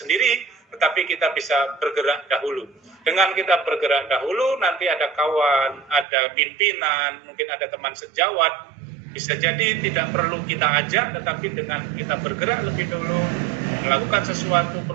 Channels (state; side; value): drops out; left; at 6.1 s